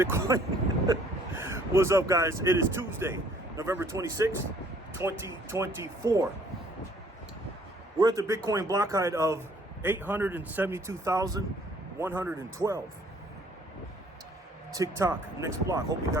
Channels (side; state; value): both; normal; correlation 0.59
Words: What's up, guys? It is Tuesday, November 26th, 2024. We're at the Bitcoin block height of 872,112. TikTok, next block. Hope you